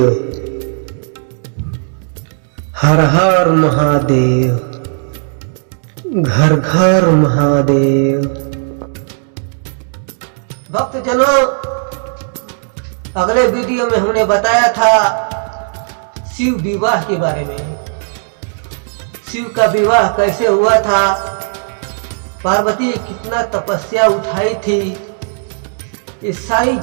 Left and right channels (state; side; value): silent; left; 70 dB below the other